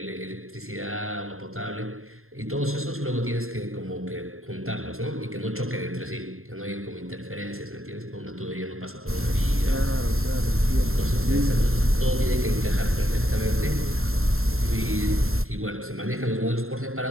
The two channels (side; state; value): left; late; 0.61 ms